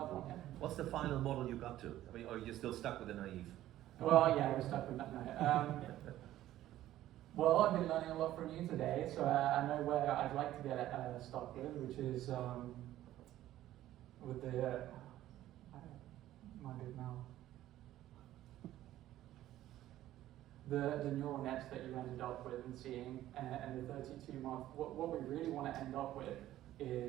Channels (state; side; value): quieter; left; 13.8 dB